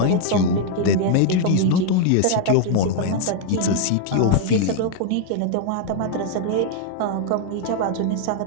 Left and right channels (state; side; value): different; both; correlation 0.00